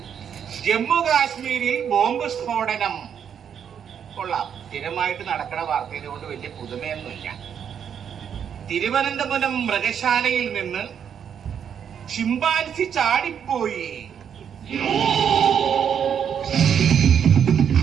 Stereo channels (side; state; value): left; quieter; 8.1 dB